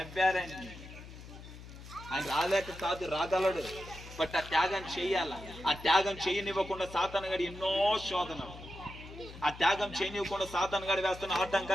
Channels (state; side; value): noise; left; hum, 15 dB below the sound